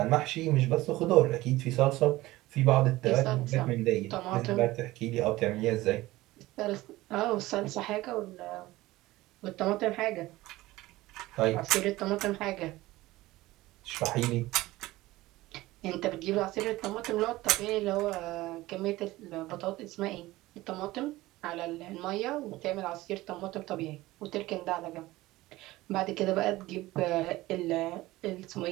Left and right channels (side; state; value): left; quieter; 18.2 dB